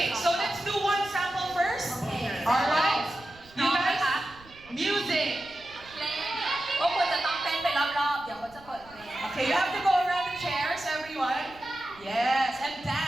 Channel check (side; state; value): right; noise; rumble, 24 dB below the sound